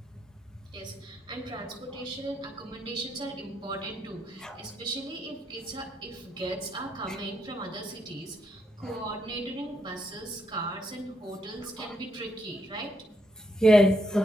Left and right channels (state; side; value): normal; both; correlation 0.77